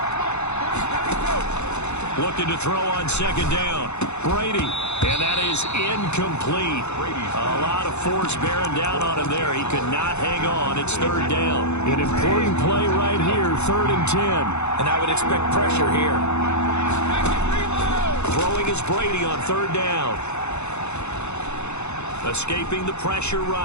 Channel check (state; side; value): late; right; 0.81 ms